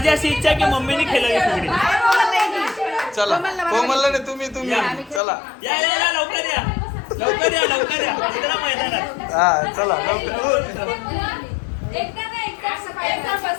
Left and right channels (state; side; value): drops out; right; at 5.2 s